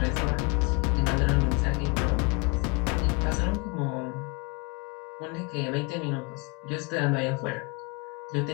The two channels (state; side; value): quieter; right; 30.3 dB